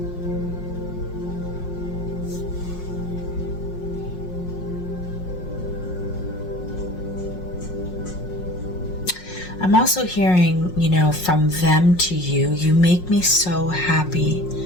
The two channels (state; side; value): late; right; 5.5 ms